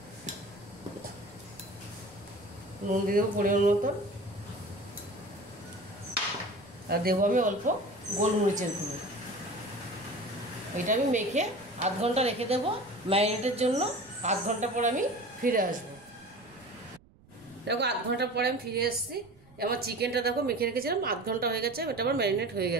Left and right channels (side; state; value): right; noise; rumble, 26 dB below the sound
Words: দিয়ে দেবো পরিমাণ মতো। আর দেবো আমি অল্প গোলমরিচের গুঁড়ো। এটা আমি মেখে আধ ঘন্টা রেখে দেবো ম্যারিনেটের জন্য। আধ ঘন্টা পর আমি ফিরে আসবো। দেখো আধ ঘন্টা পরে আমি ফিরে এসেছি। আমার চিকেনটা দেখো মেখে রেখেছিলাম, আধ ঘন্টা হয়ে গেছে, এটা আমার ম্যারিনেট হয়ে